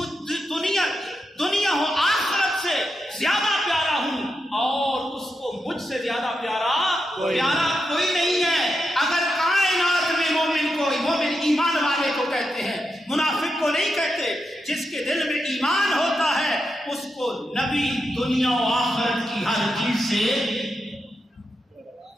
دنیا و آخرت سے زیادہ پیارا ہوں اور اس کو مجھ سے زیادہ پیارا کوئی نہیں ہے. اگر کائنات میں مومن ایمان والے کو کہتے ہیں, منافق کو نہیں کہتے. جس کے دل میں ایمان ہوتا ہے اس کو نبی دنیا و آخرت کی ہر چیز سے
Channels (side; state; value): both; normal; correlation 0.86